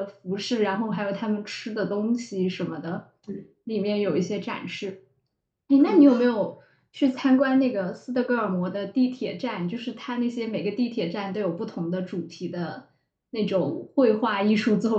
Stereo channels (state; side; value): identical; both; correlation 1.00